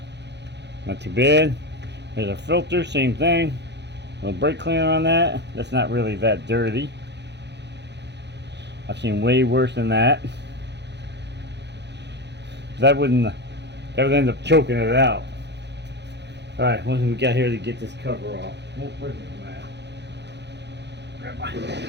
too bad. There's a filter, same thing. A little brake cleaner on that. That's not really that dirty. I've seen way worse than that. That would end up choking it out. Alright, what do we got here to get this cover off? We'll bring the mat. Grab my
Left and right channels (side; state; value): left; late; 0.50 ms